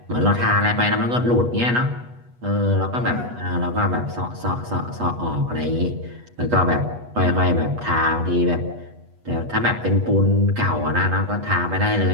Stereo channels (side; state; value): left; late; 8.2 ms